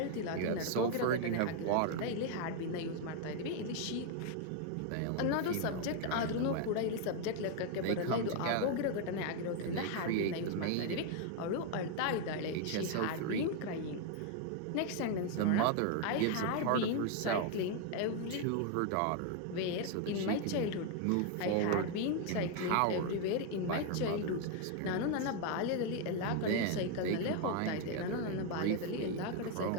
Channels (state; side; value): different; both; correlation 0.01